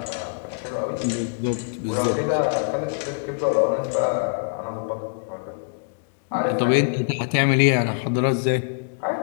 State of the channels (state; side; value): silent; right; digital silence